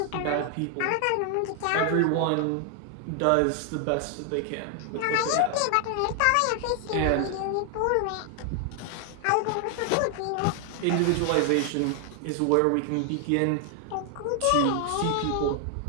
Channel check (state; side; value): different; both; correlation 0.00